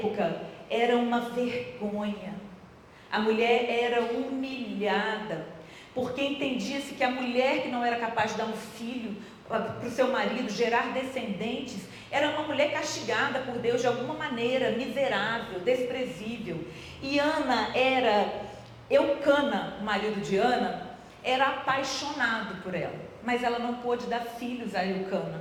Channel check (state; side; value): identical; both; correlation 1.00